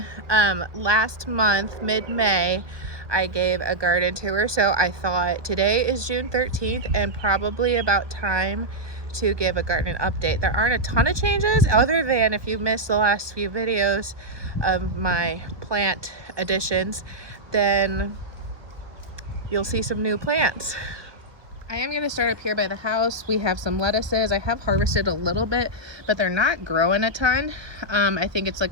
Last month, mid-May, I gave a garden tour, so I thought today is June 13th and probably about time to give a garden update. There aren't a ton of changes other than if you missed the last few videos of my plant additions, then you'll see some new plants. I am going to start up here by the house. We have some lettuces. I have harvested a little bit, but they're not growing a ton. I think it's like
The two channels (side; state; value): left; late; 1.2 ms